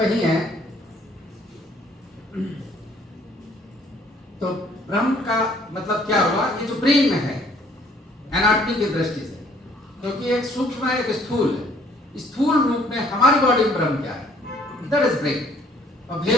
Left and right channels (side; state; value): both; normal; correlation 0.60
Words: है। तो ब्रह्म का मतलब क्या हुआ? ये जो ब्रेन में है एनाटॉमी की दृष्टि से, क्योंकि एक सूक्ष्म है, एक स्थूल है। स्थूल रूप में हमारी बॉडी में ब्रह्म क्या है? That is brain. और